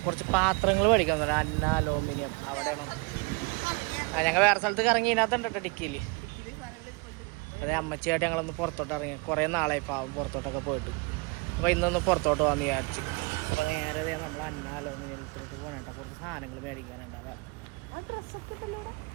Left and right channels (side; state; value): left; quieter; 29.7 dB